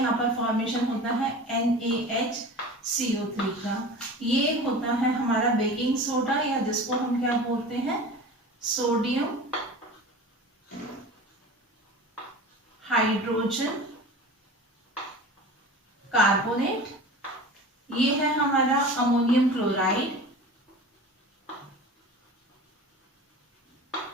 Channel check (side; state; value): both; normal; correlation 0.36